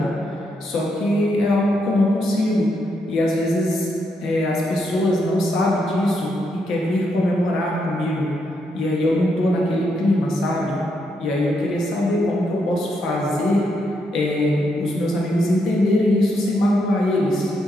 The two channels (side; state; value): both; normal; correlation 0.79